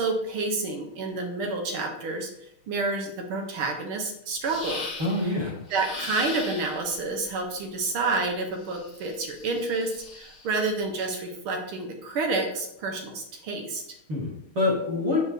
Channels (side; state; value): left; late; 6.5 ms